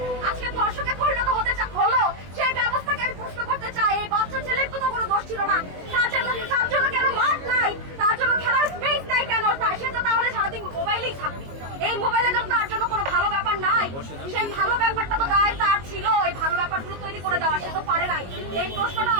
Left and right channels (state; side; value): late; left; 22 ms